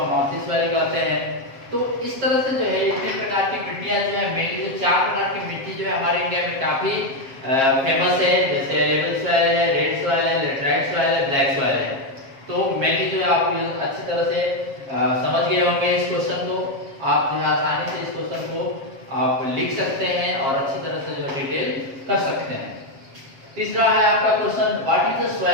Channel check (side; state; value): left; late; 7.4 ms